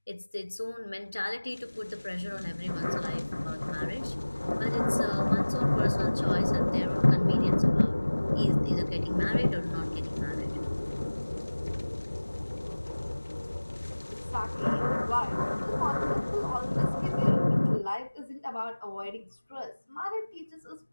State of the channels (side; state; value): both; inverted; correlation -1.00